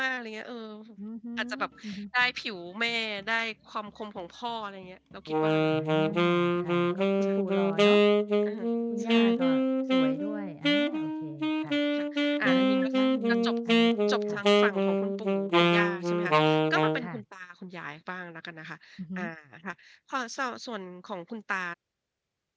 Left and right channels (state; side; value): identical; both; correlation 1.00